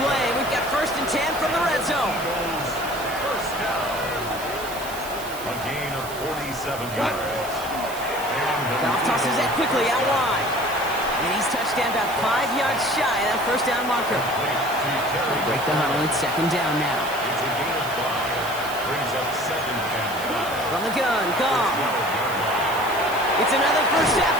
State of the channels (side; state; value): right; noise; hiss, 13 dB below the sound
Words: We've got 1st and 10 from the red zone. First down. A gain of 47 yards. Goff tosses that quickly out wide. And he's touched down about 5 yards shy of that 1st down marker. Break the huddle. It's 2nd down now. It's a gain of 5. Brings up 2nd and 5. From the gun, Goff. It's another first half